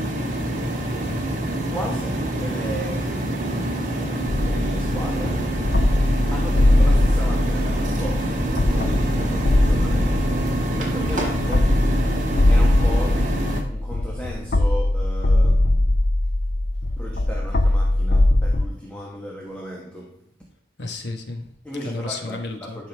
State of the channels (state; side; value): normal; both; correlation 0.89